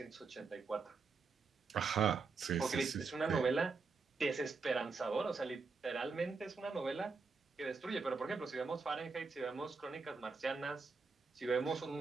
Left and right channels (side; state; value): left; quieter; 4.5 dB